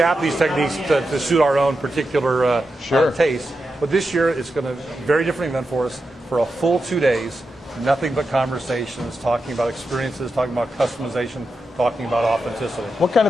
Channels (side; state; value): both; normal; correlation 0.88